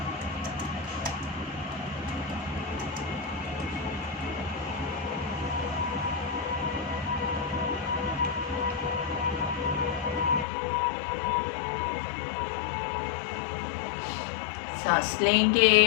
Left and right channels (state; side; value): drops out; right; at 10.5 s